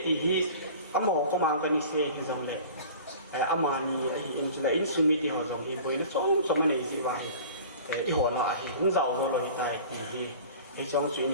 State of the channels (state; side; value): inverted; both; correlation -0.42